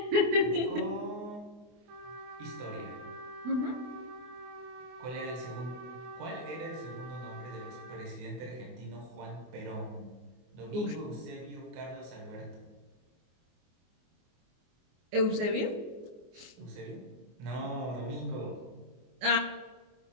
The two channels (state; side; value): late; left; 24 ms